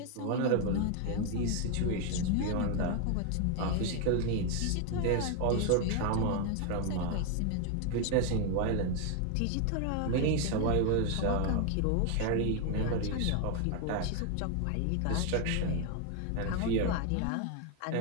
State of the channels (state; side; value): different; both; correlation 0.01